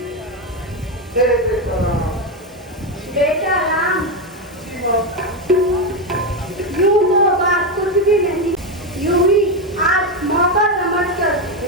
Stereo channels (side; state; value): both; normal; correlation 0.09